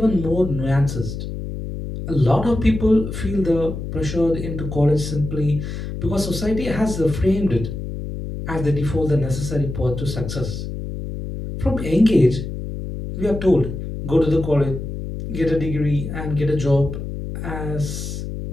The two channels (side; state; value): left; noise; hum, 7 dB below the sound